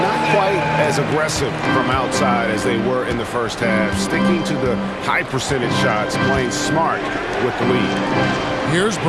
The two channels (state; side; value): identical; both; correlation 1.00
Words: not quite as aggressive from outside as they were in the first half, sticking to the high percentage shots, playing smart with the lead. Here's